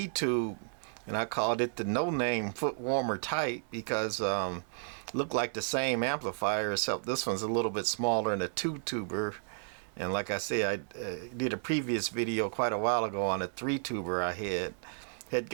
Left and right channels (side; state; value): left; silent; digital silence